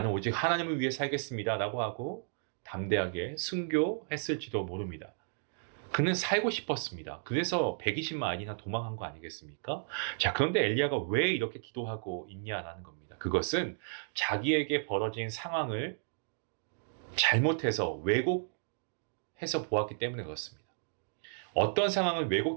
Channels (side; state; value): left; silent; digital silence